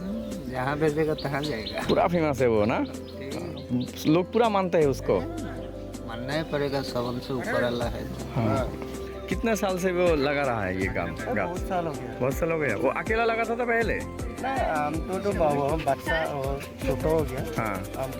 जहाँ भेजेगा तहाँ जाएगा। पूरा फेमस है वो ना, लोग पूरा मानते हैं उसको। मानना ही पड़ेगा, सबन से ऊपर अल्लाह है। हाँ। कितने साल से वो लगा रहा है ये काम? बहुत साल हो गया। बहुत साल हो गया। वो अकेला लगा था पहले? हम तो बाबू बच्चा और छोटा हो गया। हाँ, हम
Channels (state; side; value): identical; both; correlation 1.00